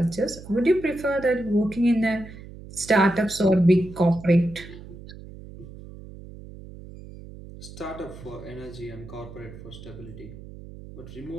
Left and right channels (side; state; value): right; noise; hum, 15 dB below the sound